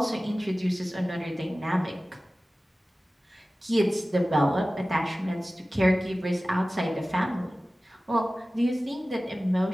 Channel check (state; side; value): normal; both; correlation 0.97